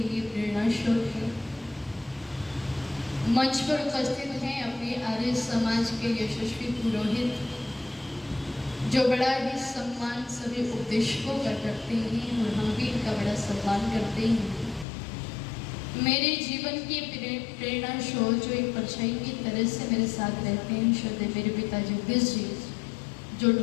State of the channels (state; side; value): drops out; right; at 14.9 s